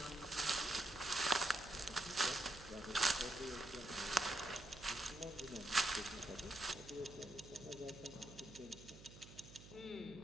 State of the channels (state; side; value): noise; right; hum, 16 dB below the sound